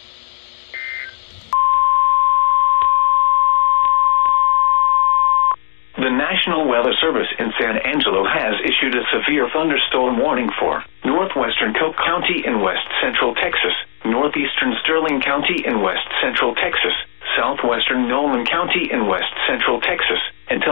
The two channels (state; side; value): silent; right; digital silence